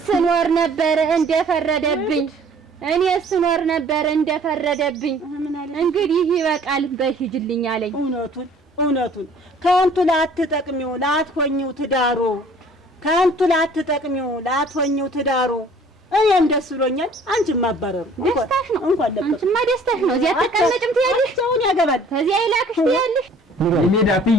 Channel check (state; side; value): normal; both; correlation 0.53